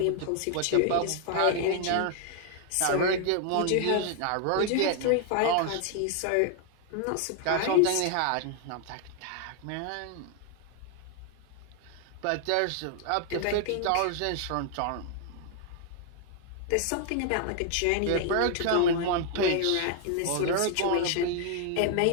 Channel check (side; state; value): both; different; correlation 0.00